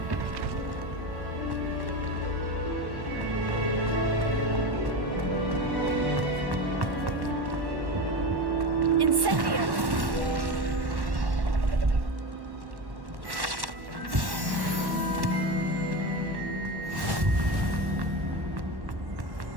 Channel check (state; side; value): late; left; 1.1 ms